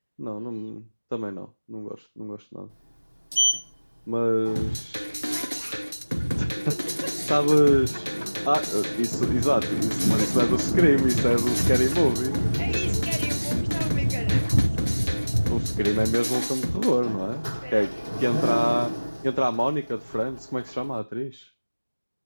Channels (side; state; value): both; inverted; correlation -1.00